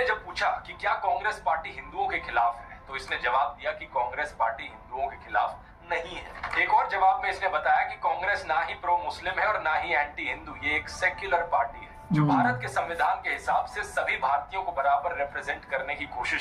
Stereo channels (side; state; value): both; identical; correlation 1.00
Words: जब पूछा कि क्या कांग्रेस पार्टी हिंदुओं के खिलाफ है तो इसने जवाब दिया कि कांग्रेस पार्टी हिंदुओं के खिलाफ नहीं है। एक और जवाब में इसने बताया कि कांग्रेस ना ही प्रो मुस्लिम है और ना ही एंटी हिंदू, ये एक सेक्युलर पार्टी है जो भारत के संविधान के हिसाब से सभी भारतीयों को बराबर रिप्रेजेंट करने की